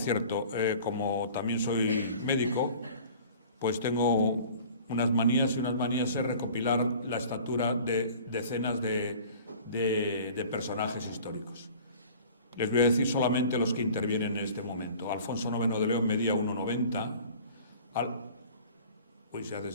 como también soy médico, pues tengo unas manías es recopilar la estatura de decenas de personajes históricos. Les voy a decir solamente los que intervienen en este momento. Alfonso IX de León medía 1,90. Se hace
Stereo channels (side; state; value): both; inverted; correlation -0.45